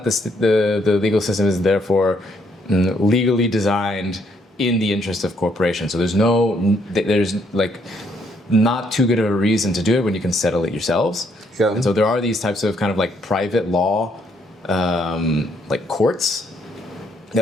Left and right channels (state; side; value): normal; both; correlation 0.70